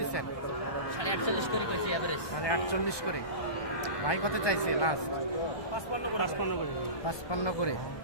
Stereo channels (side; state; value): right; late; 1.2 ms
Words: 48 করে কইছি এভারেজ। 48 করে। ভাই কত চাইছে লাস্ট? 55 করে 55 করে।